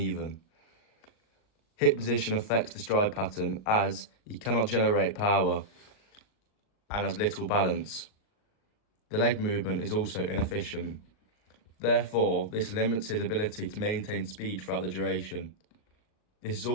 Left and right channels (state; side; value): late; right; 39 ms